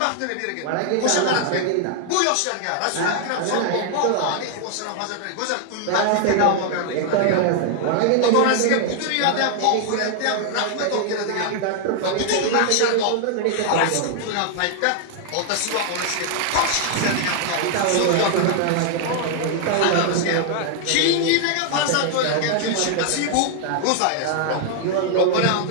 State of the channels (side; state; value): both; different; correlation 0.00